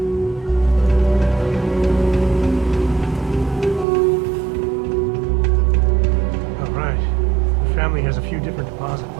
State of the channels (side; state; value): left; drops out; at 3.9 s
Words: Has a few different deposit